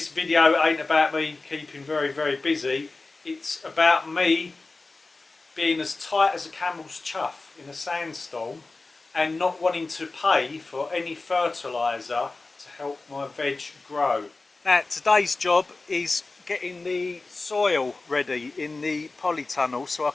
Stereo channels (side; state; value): right; quieter; 3.5 dB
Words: video ain't about me keeping very busy. It's about me being as tight as a camel's chuff in a sandstorm and not wanting to pay for any fertiliser to help my veg grow. Now today's job is getting the soil ready in the polytunnel so I